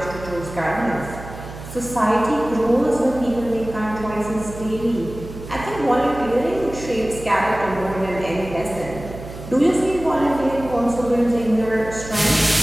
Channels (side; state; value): right; noise; hum, 13 dB below the sound